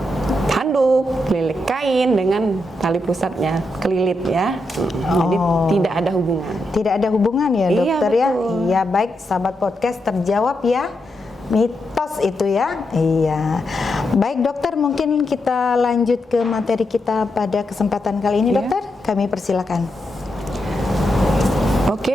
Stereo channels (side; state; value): both; normal; correlation 0.84